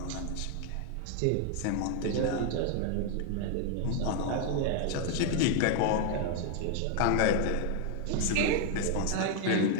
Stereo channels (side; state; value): both; different; correlation 0.00